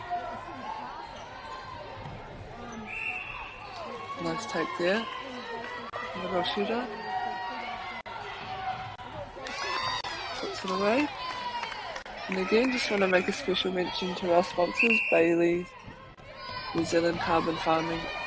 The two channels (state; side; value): identical; both; correlation 1.00